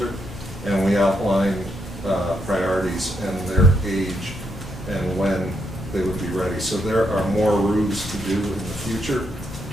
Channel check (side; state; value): both; normal; correlation 0.78